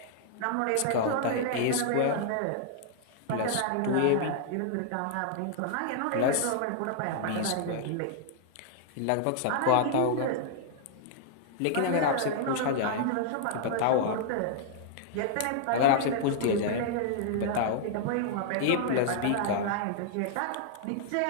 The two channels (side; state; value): both; different; correlation -0.01